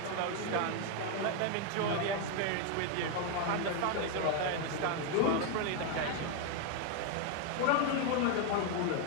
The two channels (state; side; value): different; both; correlation 0.01